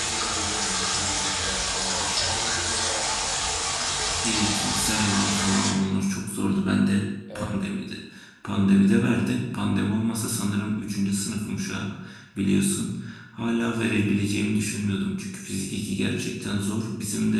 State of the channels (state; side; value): identical; both; correlation 1.00